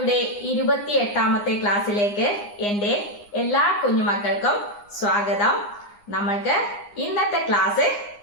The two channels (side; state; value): right; late; 9.8 ms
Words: 28ാമത്തെ ക്ലാസ്സിലേക്ക് എന്റെ എല്ലാ കുഞ്ഞുമക്കൾക്കും സ്വാഗതം. നമ്മൾക്ക് ഇന്നത്തെ ക്ലാസ്